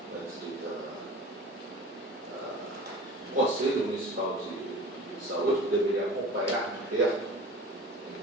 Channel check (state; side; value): normal; both; correlation 0.39